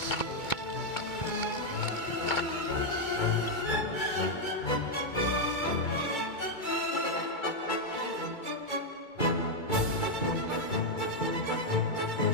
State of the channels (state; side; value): late; right; 2.3 ms